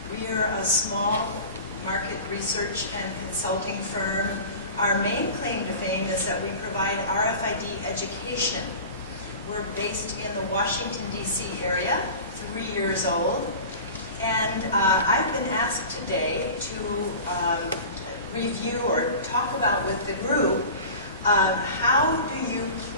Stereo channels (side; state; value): both; inverted; correlation -0.36